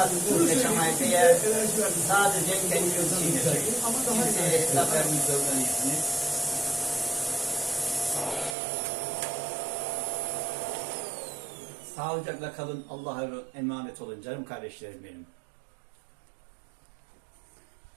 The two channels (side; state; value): left; drops out; at 8.6 s